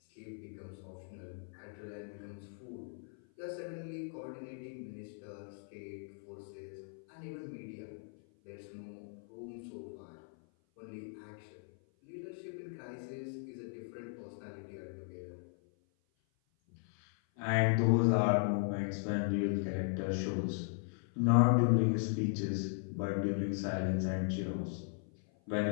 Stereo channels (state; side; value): silent; right; 53 dB below the other